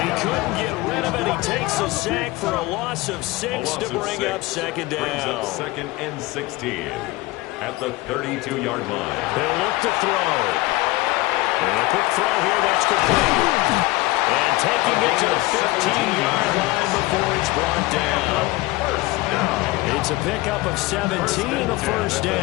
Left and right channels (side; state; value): right; quieter; 20.3 dB